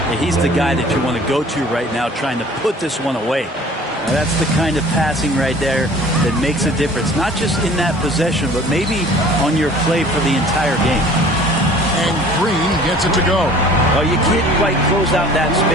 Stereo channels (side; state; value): both; normal; correlation 0.49